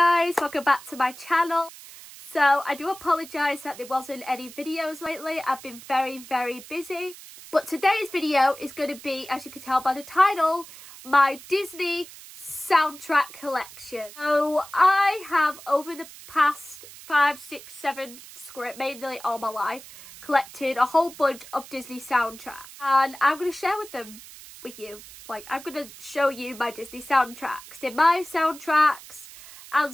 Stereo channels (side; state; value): right; noise; hiss, 17 dB below the sound